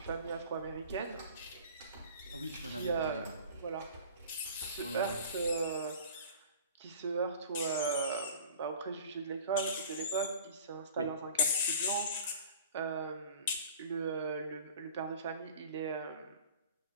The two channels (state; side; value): inverted; both; correlation -0.42